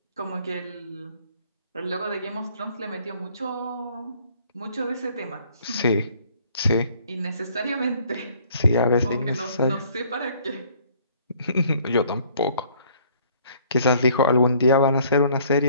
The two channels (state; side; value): inverted; both; correlation -0.59